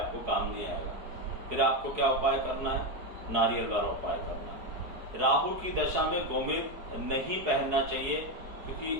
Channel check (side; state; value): left; late; 4.7 ms